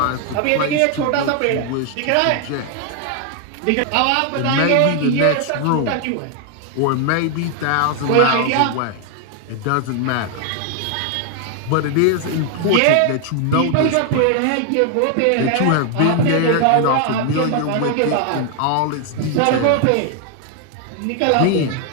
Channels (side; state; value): both; different; correlation 0.00